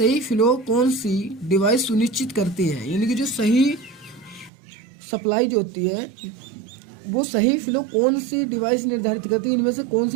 फ्लो कौन सी डिवाइस सुनिश्चित करती है, यानी कि जो सही सप्लाई जो होती है वो सही फ्लो कौन सी डिवाइस निर्धारित करती है, इनमें से कौन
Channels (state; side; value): drops out; left; at 4.5 s